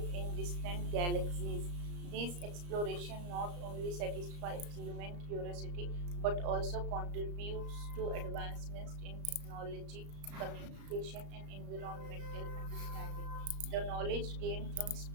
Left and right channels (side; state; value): left; late; 34 ms